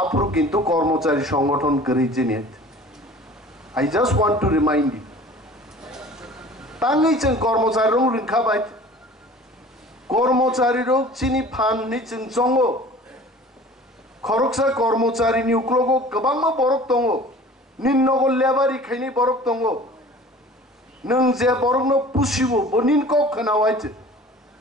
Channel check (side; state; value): both; normal; correlation 0.45